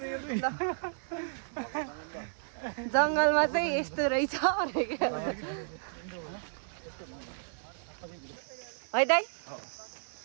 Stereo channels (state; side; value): silent; left; digital silence